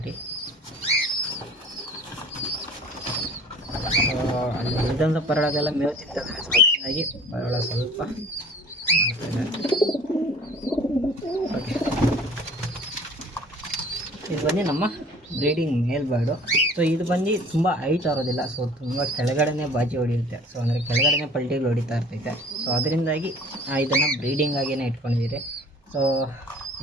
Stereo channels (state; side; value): normal; both; correlation 0.48